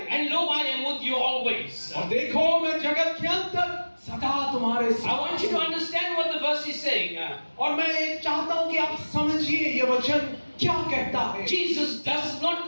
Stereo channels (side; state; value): both; inverted; correlation -1.00